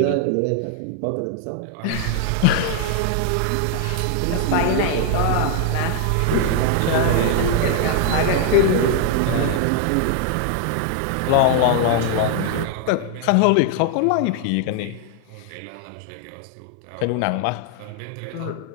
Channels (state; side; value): different; both; correlation 0.00